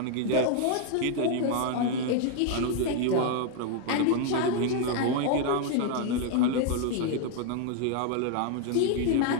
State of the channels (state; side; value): different; both; correlation 0.00